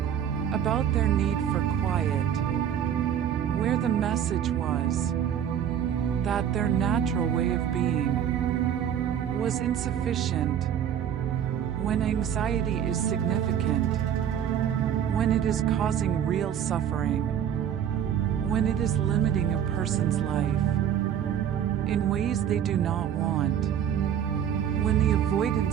about their need for quiet, where the message was that their natural way of being was insufficient. When anxiety is significant, when it is causing real suffering, when it is limiting a person's life in ways they do not want, when the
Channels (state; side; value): quieter; left; 9.3 dB